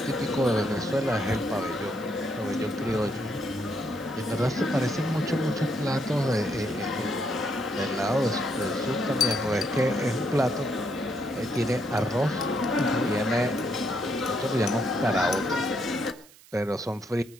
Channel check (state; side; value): noise; right; hiss, 24 dB below the sound